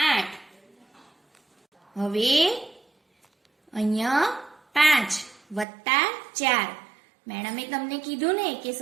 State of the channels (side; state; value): left; drops out; at 5.7 s